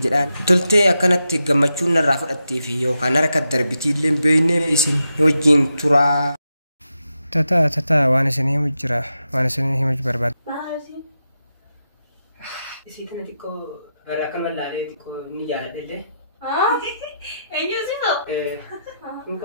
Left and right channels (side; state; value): both; inverted; correlation -0.86